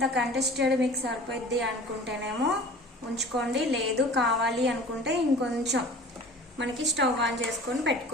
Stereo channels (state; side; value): normal; both; correlation 0.43